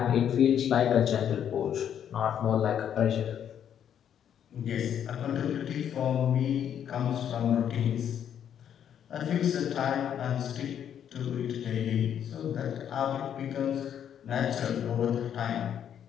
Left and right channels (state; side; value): quieter; right; 9.2 dB